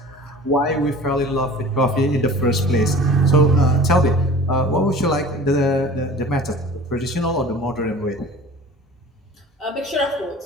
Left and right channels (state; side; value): normal; both; correlation 0.42